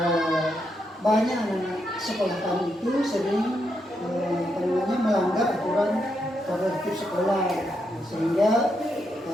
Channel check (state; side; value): normal; both; correlation 0.81